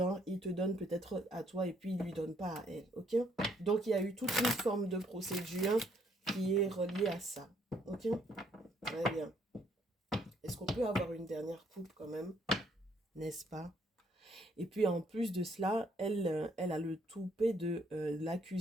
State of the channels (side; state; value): both; normal; correlation 0.68